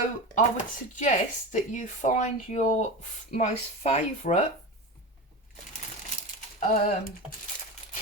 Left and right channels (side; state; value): both; normal; correlation 0.25